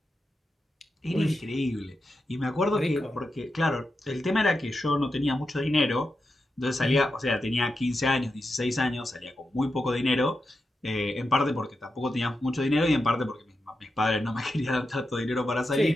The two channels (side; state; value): both; normal; correlation 0.89